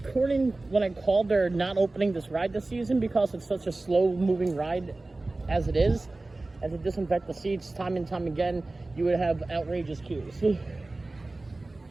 According when I called, they're not opening this ride this season because it's such a slow-moving ride as it is. As it disinfect the seats time and time again, you would have outrageous queues.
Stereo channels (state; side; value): quieter; left; 3.1 dB